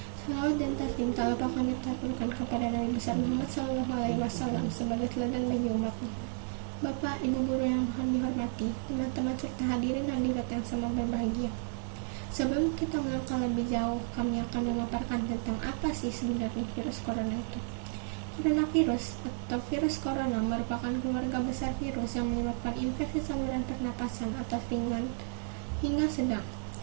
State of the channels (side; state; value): left; silent; 56 dB below the other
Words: Salawat dan taslim tak lupa kami taturkan kepada Nabi besar Muhammad SAW sebagai teladan bagi umatnya. Bapak, Ibu guru yang kami hormati, teman-teman serta hadirin hadirat yang sama berbahagia. Sebelum kita melangkah lebih jauh, kami akan memaparkan tentang apa sih sebenarnya virus corona itu. Coronavirus atau virus corona merupakan keluarga besar virus yang menyebabkan infeksi saluran pernapasan atau ringan hingga sedang,